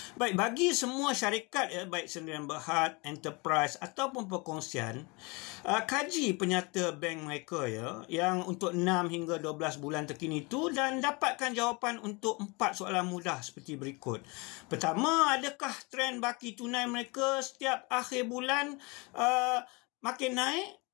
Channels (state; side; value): quieter; right; 27.9 dB